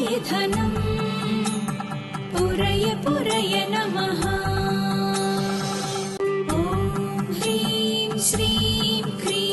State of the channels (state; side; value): identical; both; correlation 1.00